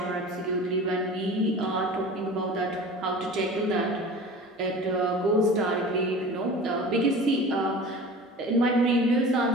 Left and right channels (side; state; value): both; normal; correlation 0.38